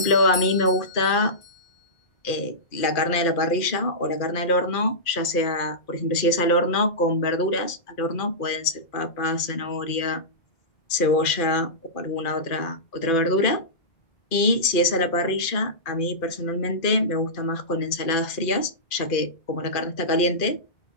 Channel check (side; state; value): right; late; 2.4 ms